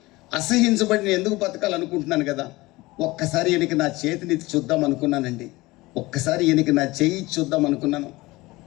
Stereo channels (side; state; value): right; quieter; 20.6 dB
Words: అసహించబడి నేను ఎందుకు బతకాలనుకుంటున్నాను కదా. ఒక్కసారి ఈయనకి నా చేతిని చూద్దాం అనుకున్నానండి. ఒక్కసారి ఈయనకి నా చెయ్యి చూద్దాం అనుకున్నాను.